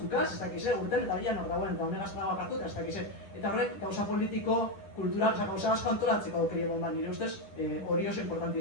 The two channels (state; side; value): late; right; 10 ms